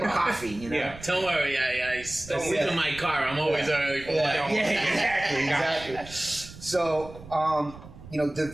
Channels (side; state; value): right; noise; rumble, 17 dB below the sound